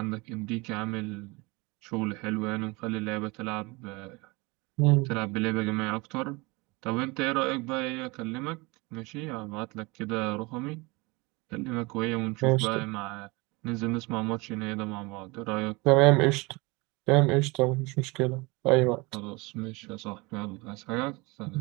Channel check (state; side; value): quieter; left; 25.4 dB